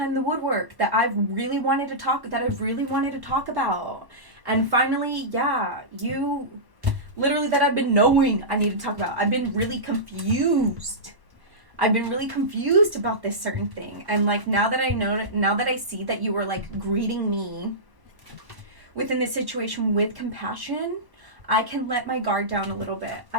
the woodwork that I've really wanted to talk about. And finally, yeah, you literally that I've been knowing I need to talk about. I've been really confused about this certain thing. And like now that I see that you were like greeting me within this situation with compassion, I can let my guard down a little bit.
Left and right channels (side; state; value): left; late; 1.1 ms